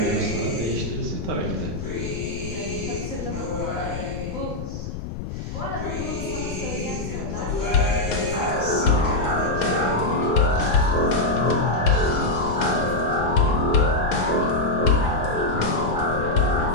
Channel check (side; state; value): left; noise; rumble, 7 dB below the sound